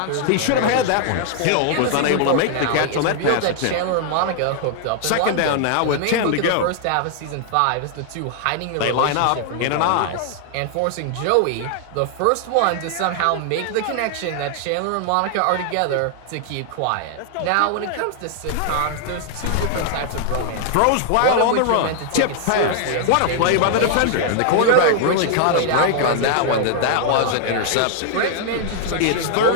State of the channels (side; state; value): both; different; correlation 0.00